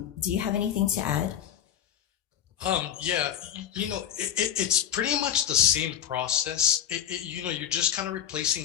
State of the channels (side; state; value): right; quieter; 10.0 dB